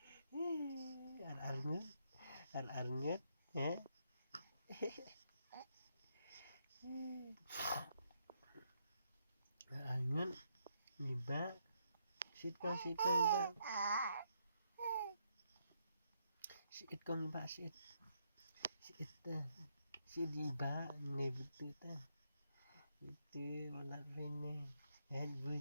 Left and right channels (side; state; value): both; inverted; correlation -0.76